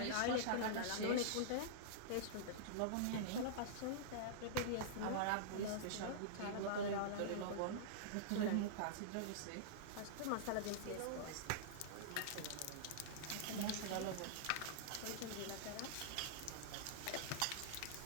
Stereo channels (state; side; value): different; both; correlation -0.02